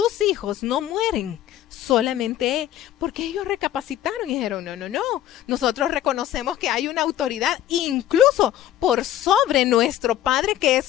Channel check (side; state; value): right; quieter; 12.4 dB